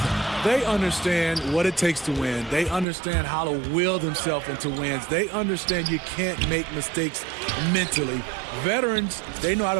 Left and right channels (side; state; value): left; drops out; at 2.9 s